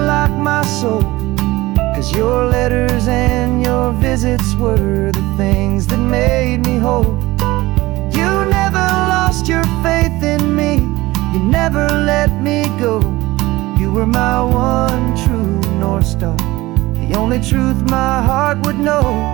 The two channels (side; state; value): left; quieter; 19.2 dB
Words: my soul, 'cause your letters and your visits were the things that made me whole. You never lost your faith in me, you never let me go. You were my one true North Star. only truth my heart would know.